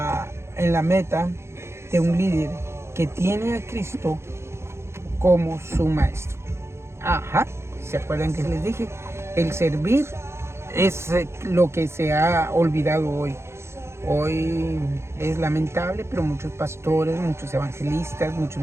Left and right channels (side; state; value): left; late; 0.13 ms